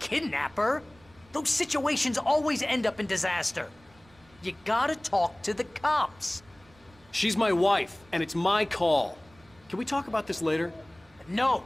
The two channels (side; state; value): right; noise; rumble, 29 dB below the sound